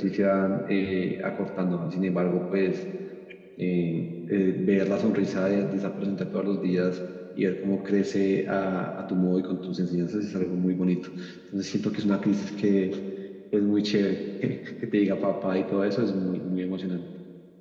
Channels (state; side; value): identical; both; correlation 1.00